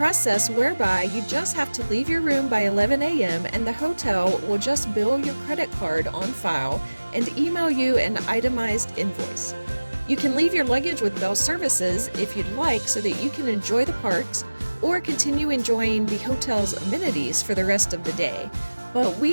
whereby you just have to leave your room by 11 a.m. and the hotel will just bill your credit card on file and email you an itemized invoice. You can leave your luggage with Bell Services if you'd like so that you can enjoy the parks or continue enjoying the hotel's amenities for the rest of the day. But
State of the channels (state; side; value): inverted; both; correlation -1.00